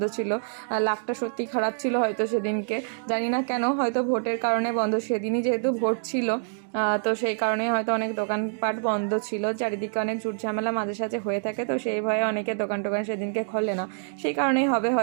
ছিল। লাকটা সত্যি খারাপ ছিল হয়তো সেদিনকে, জানি না কেন, হয়তো ভোটের কারণে বন্ধ, সেদিনই যেহেতু ভোট ছিল তো সেই কারণেই হয়তো অনেক দোকানপাট বন্ধ ছিল। চারিদিকে অনেক ঝুট ঝামেলা মাঝে সাঝে হয়ে থাকে, তো সেই ভয়ে অনেকে দোকান সেদিনকে খোলে না, সেই কারণেই হবে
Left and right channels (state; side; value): silent; left; digital silence